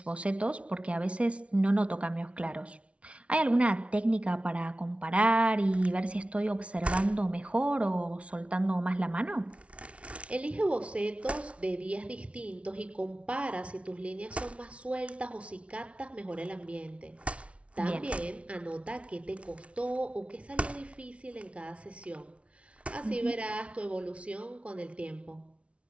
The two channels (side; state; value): left; late; 0.062 ms